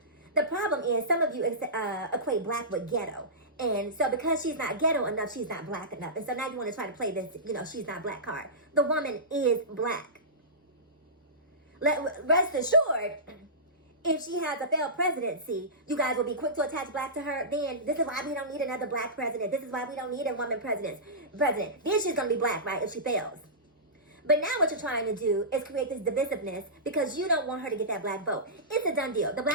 The problem is some of you equate black with ghetto. And so because she's not ghetto enough, she's not black enough. And so now you want to try to play this, you know, she's not black card. The woman is black. Rest assured, if she has a failed presidency, you guys will be quick to attach black to her. Then this is why we don't need another black president. This is why we don't need a woman president. Then she's going to be black, right, if she fails. But now what you're trying to do is create this divisiveness because you don't want her to get that black vote. It's a done deal. The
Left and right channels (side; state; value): both; normal; correlation -0.19